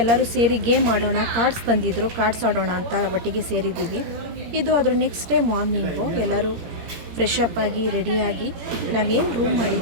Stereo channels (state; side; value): late; left; 17 ms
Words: ಎಲ್ಲರೂ ಸೇರಿ ಗೇಮ್ ಆಡೋಣ, ಕಾರ್ಡ್ಸ್ ತಂದಿದ್ರು, ಕಾರ್ಡ್ಸ್ ಆಡೋಣ ಅಂತ ಒಟ್ಟಿಗೆ ಸೇರಿದ್ದೀವಿ. ಇದು ಅದ್ರ ನೆಕ್ಸ್ಟ್ ಡೇ ಮಾರ್ನಿಂಗು ಎಲ್ಲರೂ ಫ್ರೆಶ್ ಅಪ್ ಆಗಿ ರೆಡಿಯಾಗಿ ನಾವೇನು ರೂಮ್